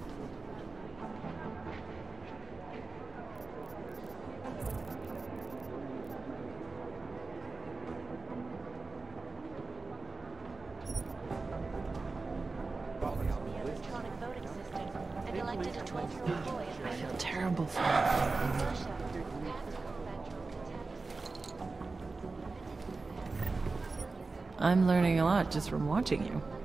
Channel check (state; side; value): quieter; left; 3.9 dB